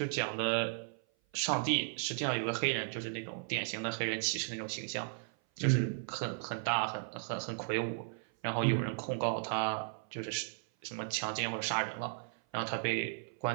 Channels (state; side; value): silent; left; 54 dB below the other